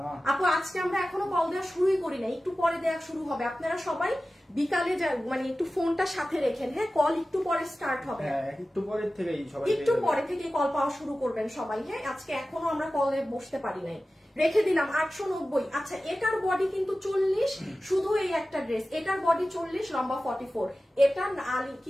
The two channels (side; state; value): both; normal; correlation 0.95